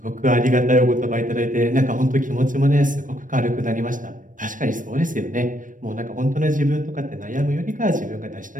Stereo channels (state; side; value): late; left; 0.38 ms